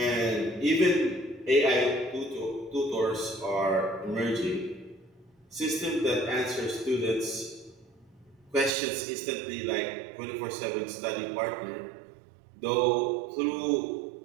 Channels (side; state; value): left; drops out; at 8.7 s